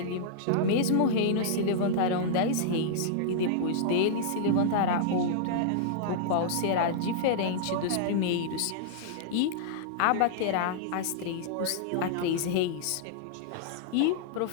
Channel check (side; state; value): both; different; correlation -0.02